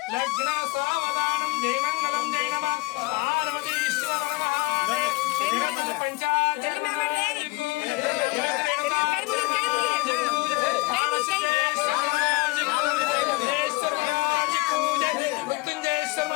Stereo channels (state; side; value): quieter; right; 23.9 dB